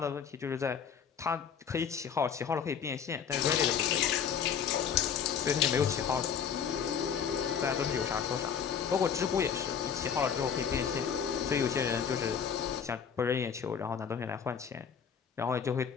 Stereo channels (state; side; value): quieter; right; 7.4 dB